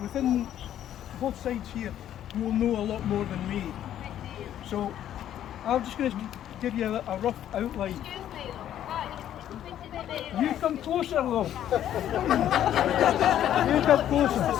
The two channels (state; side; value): quieter; right; 11.1 dB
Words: both sides here who will know a lot more than me. So I'm just going to give you a rough outline. You come closer, though. You come closer.